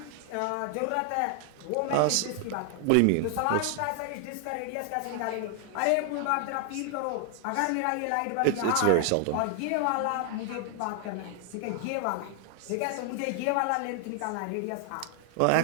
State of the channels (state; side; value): different; both; correlation 0.00